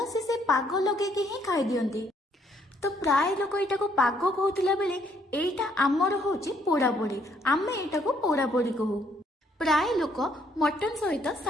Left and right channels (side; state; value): both; normal; correlation 0.69